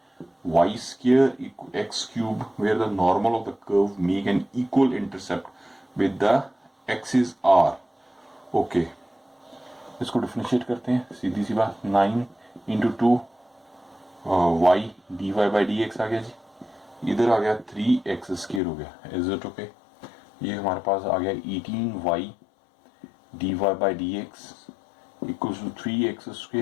x³ where the normal of the curve make an equal intercept with the axis r। Okay, इसको differentiate करते हैं, सीधी सी बात, 9 × 2 y dy/dx आ गया जी, इधर आ गया 3x² हो गया, इज इट ओके। ये हमारे पास आ गया 18y dy/dx =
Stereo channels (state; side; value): drops out; right; at 18.6 s